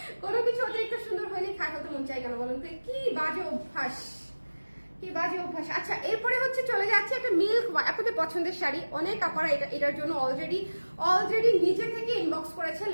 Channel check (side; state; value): both; inverted; correlation -1.00